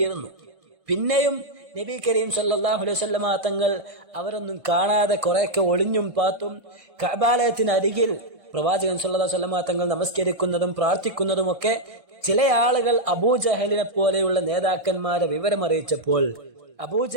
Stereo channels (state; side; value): late; left; 1.6 ms